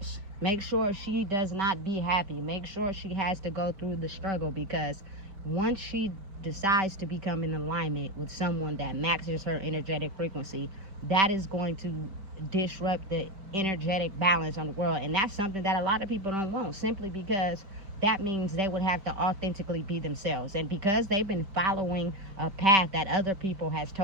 Make sure she does not be happy. Make sure she has to go through the struggle, because once she decides to become in alignment with someone that matches her energetic frequency, that is going to disrupt the energetic balance on the world. And that's something that a lot of people don't want, simply because that means they would have to authentically be themselves. And because they've been following a path that other people has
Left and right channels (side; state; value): left; late; 5.1 ms